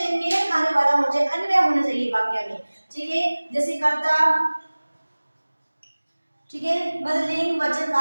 मेल खाने वाला होना चाहिए, अन्वय होना चाहिए वाक्य में, ठीक है। जैसे कर्ता, ठीक है, मतलब लिंग वचन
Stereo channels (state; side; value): inverted; both; correlation -1.00